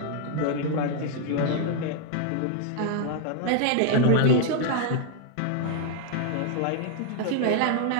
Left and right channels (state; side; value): different; both; correlation 0.00